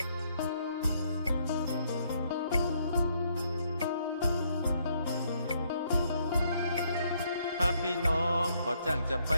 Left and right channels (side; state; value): both; inverted; correlation -0.70